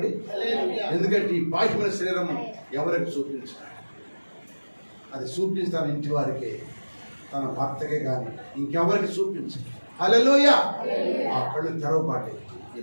ఎందుకంటే ఈ బాహ్యమైన శరీరం ఎవరికి చూపించారు? అది చూపిస్తాను ఇంటి వారికి, తన భర్తకే కానీ ఇంకెవరికి చూపించు. హల్లెలూయా. ఆ కళ్ళు తెరవబాటే. ఈ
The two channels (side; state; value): both; inverted; correlation -1.00